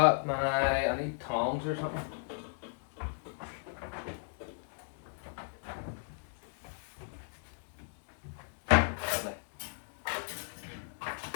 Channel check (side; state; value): right; silent; digital silence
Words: my, I need tongs or something. Lovely.